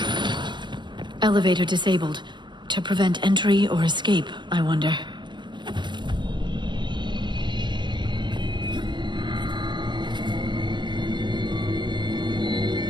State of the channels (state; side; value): late; left; 0.22 ms